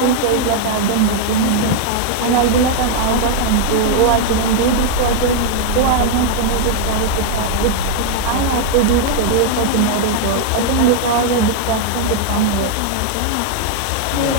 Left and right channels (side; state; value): both; different; correlation 0.00